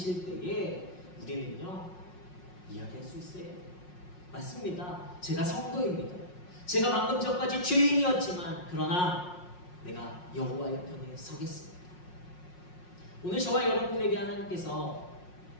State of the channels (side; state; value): right; late; 5.5 ms